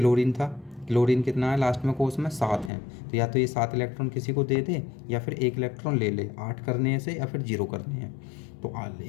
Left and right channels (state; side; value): drops out; right; at 2.7 s